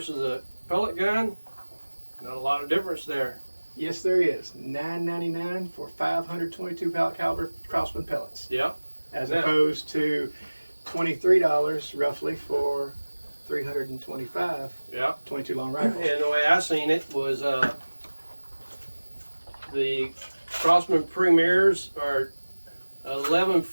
a pellet gun, not a lot of difference there. Yes, there is. $9.99 for 522 caliber Crossman pellets. Yep. As opposed to $23 roughly for 325. Yep. 22 long rifles. And the way I seen it was the Crossman Premiers are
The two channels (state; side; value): inverted; both; correlation -1.00